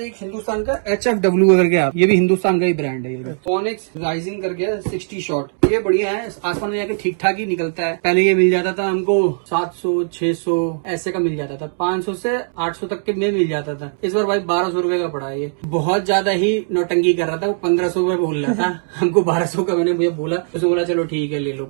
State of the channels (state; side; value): silent; left; digital silence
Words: एक हिंदुस्तान का HFW करके आप, ये भी हिंदुस्तान का ही ब्रांड है। ये फोनिक्स राइजिंग करके 60 शॉट। ये बढ़िया है, आसमान में जाके ठीक ठाक ही निकलता है। पहले ये मिल जाता था हमको 700-600 ऐसे का मिल जाता था, 500 से 800 तक के में मिल जाता था। इस बार भाई 1200 रुपए का पड़ा है। ये बहुत ज्यादा ही नौटंकी कर रहा था, वो 1500 रुपए बोल रहा था। हमको 1200 का मैंने मुझे बोला, उसने बोला चलो ठीक है ले लो